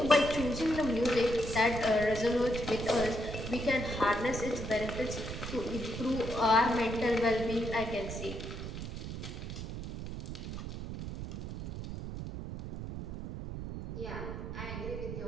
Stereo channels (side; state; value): right; noise; rumble, 7 dB below the sound